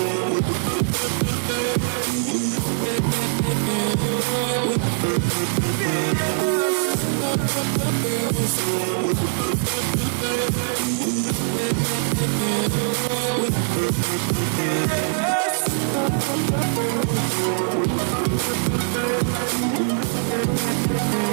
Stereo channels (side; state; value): left; silent; 64 dB below the other